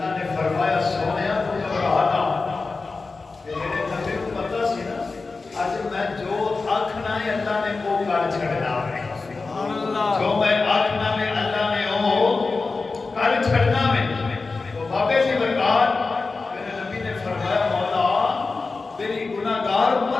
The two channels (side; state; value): right; quieter; 4.0 dB